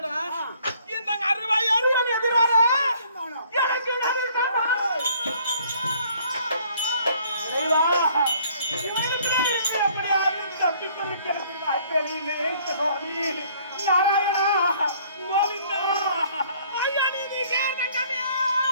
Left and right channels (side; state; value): both; inverted; correlation -0.60